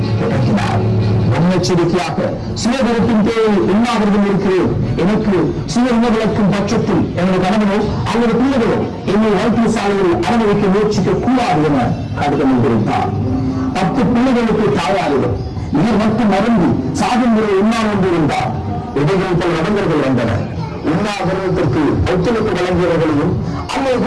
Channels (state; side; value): identical; both; correlation 1.00